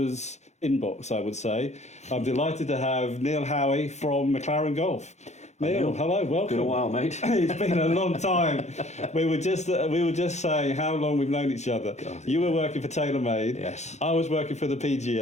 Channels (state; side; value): late; right; 0.33 ms